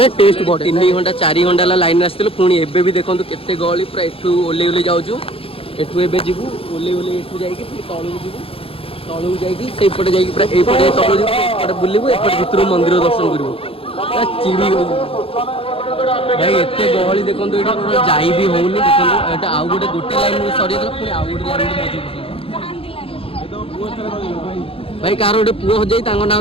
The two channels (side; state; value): right; late; 0.27 ms